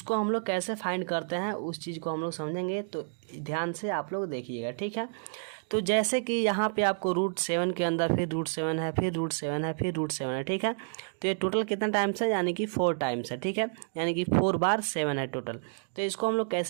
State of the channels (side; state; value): left; silent; digital silence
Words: हम लोग कैसे फाइंड करते हैं उस चीज़ को हम लोग समझेंगे, तो ध्यान से आप लोग देखिएगा, ठीक है। तो जैसे कि यहाँ पे आपको √7 के अंदर फिर √7 है, फिर √7 है, फिर √7 है, ठीक है। तो ये टोटल कितना टाइम्स है, यानी कि 4 टाइम्स है, ठीक है, यानी कि 4 बार 7 है टोटल। तो इसको हम लोग